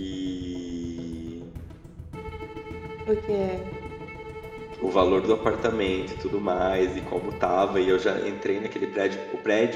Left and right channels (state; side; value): identical; both; correlation 1.00